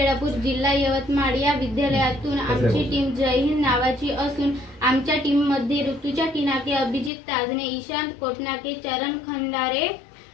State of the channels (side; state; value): right; drops out; at 7.1 s